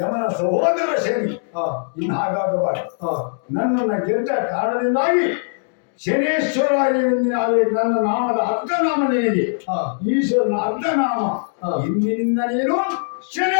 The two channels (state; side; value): silent; right; digital silence